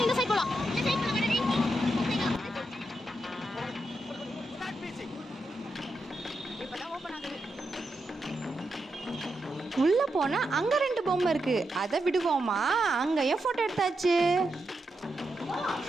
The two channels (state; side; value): normal; both; correlation 0.85